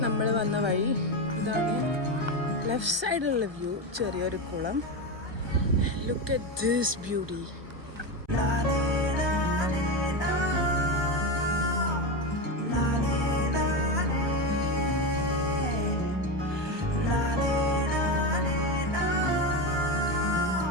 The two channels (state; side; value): late; left; 1.2 ms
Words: നമ്മൾ വന്ന വഴി. ഇതാണ് ലെഫ്റ്റ് സൈഡിലുള്ള വ്യൂ. ചെറിയൊരു കുളം. Look at this beauty.